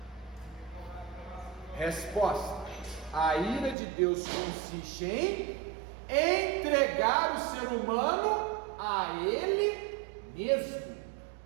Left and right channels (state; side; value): drops out; left; at 3.8 s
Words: Resposta: a ira de Deus consiste em entregar o ser humano a Ele mesmo.